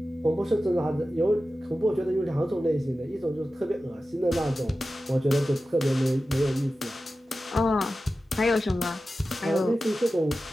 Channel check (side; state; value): both; normal; correlation 0.94